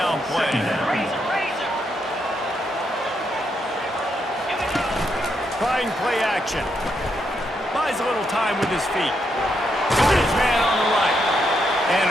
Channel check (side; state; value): both; normal; correlation 0.79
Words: play. Trying play action. Buys a little time with his feet. Got his man on the right. And